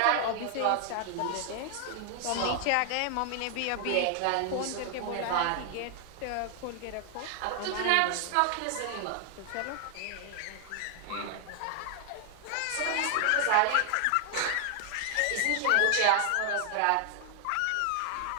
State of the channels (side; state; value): both; different; correlation 0.00